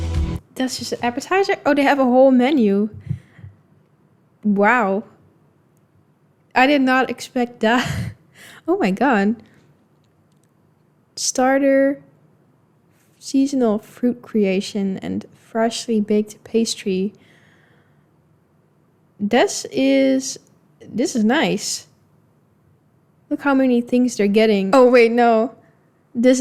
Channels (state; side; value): identical; both; correlation 1.00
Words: That's just an appetizer? Oh, they have a whole menu. Wow. I did not expect that. Oh my god. Starter, seasonal fruit creation, and freshly baked pastry. This is nice. Look how many things they're getting. Oh wait, no. This